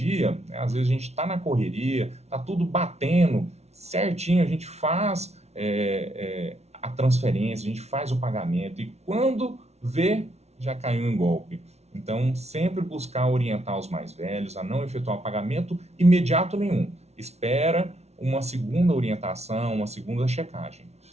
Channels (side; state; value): left; late; 0.31 ms